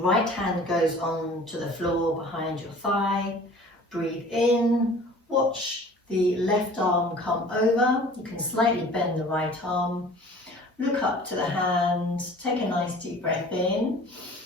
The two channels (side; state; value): both; normal; correlation 0.46